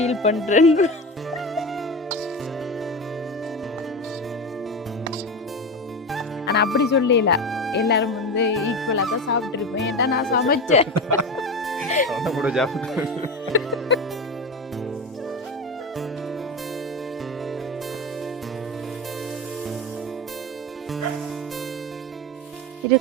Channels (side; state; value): both; normal; correlation 0.22